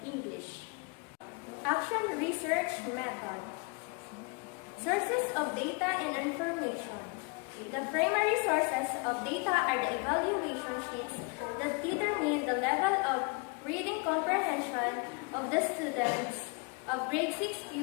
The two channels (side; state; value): right; quieter; 31.5 dB